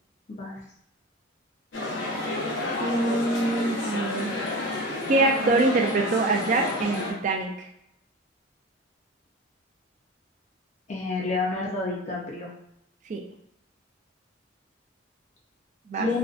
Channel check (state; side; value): normal; both; correlation 0.31